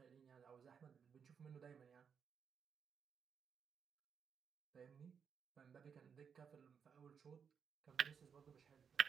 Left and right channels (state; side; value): quieter; left; 6.8 dB